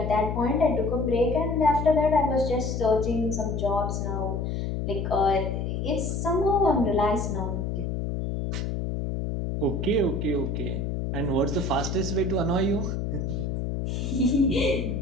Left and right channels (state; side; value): noise; left; hum, 2 dB below the sound